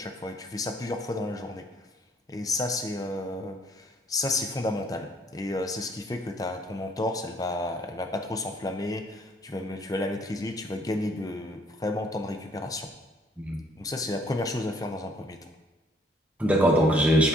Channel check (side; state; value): both; normal; correlation 0.62